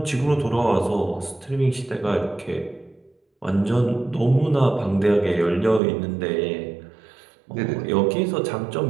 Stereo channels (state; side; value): drops out; left; at 5.8 s